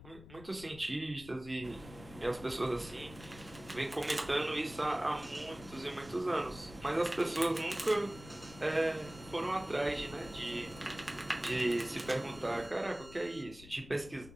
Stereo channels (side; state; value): left; noise; rumble, 17 dB below the sound